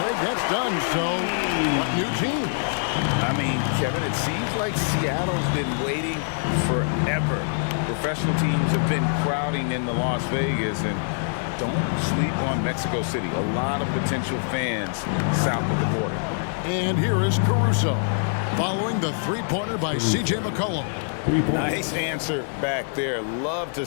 that's done, so what new teams? I mean, Kevin, it seems like Seattle's been waiting forever. Professional teams have been crowding into Las Vegas, and don't sleep on Mexico City. A lot of potential fans south of the border. And here is Caruso, following the three-pointer by C.J. McCollum. Nice answer back there. Love to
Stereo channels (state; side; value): silent; right; digital silence